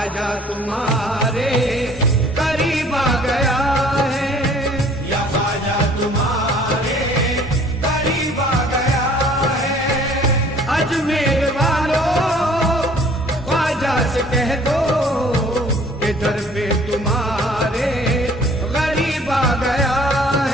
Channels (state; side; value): normal; both; correlation 0.54